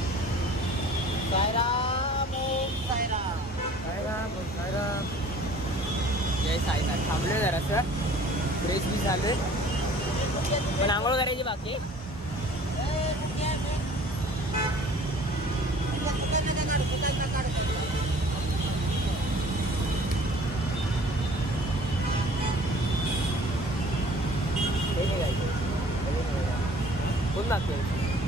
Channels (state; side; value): normal; both; correlation 0.50